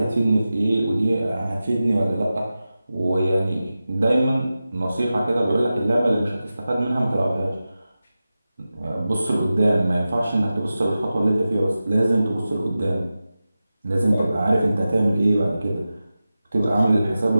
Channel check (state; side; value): inverted; both; correlation -0.94